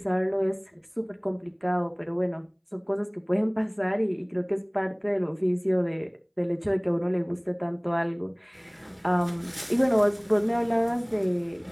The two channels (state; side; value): identical; both; correlation 1.00